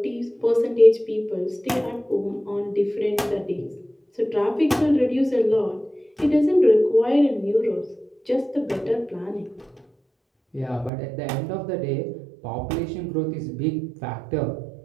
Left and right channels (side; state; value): left; drops out; at 10.9 s